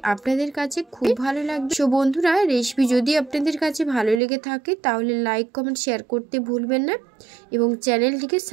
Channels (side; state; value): left; drops out; at 4.2 s